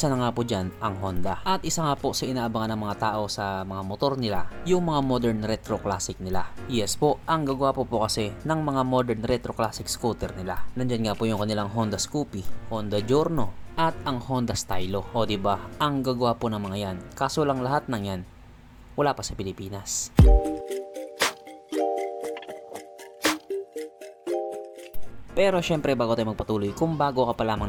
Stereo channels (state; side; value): identical; both; correlation 1.00